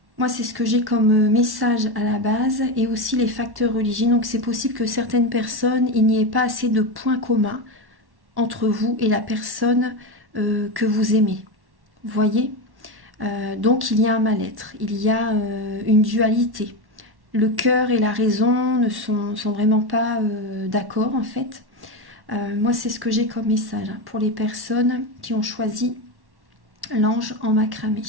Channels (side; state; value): left; late; 1.1 ms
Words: c'est ce que j'ai comme message à la base et aussi les facteurs religieux. Donc, c'est possible que certaines personnes, il n'y ait pas assez de points communs entre vous et la personne que vous aimez. Vous voyez ? Donc, il y a un mal-être, il y a une dualité. Le cœur et la raison ne sont vraiment pas d'accord, en fait. Moi, c'est ce que j'ai comme message hein, pour les personnes qui ont choisi l'ange en macramé.